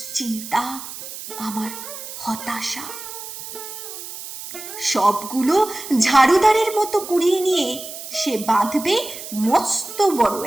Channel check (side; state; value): right; noise; hiss, 11 dB below the sound